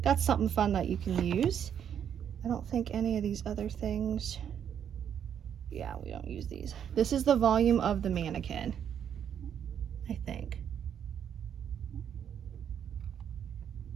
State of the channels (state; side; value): quieter; left; 8.7 dB